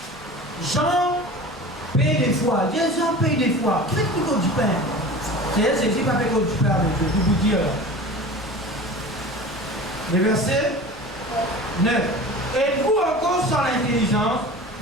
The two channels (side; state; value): both; normal; correlation 0.36